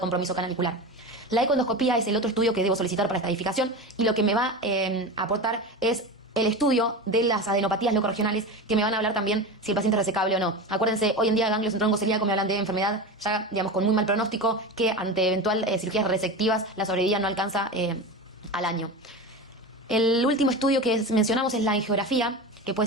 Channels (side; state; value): both; normal; correlation 0.25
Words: canalicular. La ecoendoscopía es el otro estudio que debo solicitar para estadificación y lo que me va a aportar es el estudio de las adenopatías locorregionales, que me van a hablar también si el paciente es resecable o no. Acuérdense, hoy en día ganglios en tronco celíaco me hablan de enfermedad ya, digamos, con muy mal pronóstico, que ante eventual cirugías resectivas la sobrevida no alcanza al año. El último estudio que mencionamos es la angiografía, que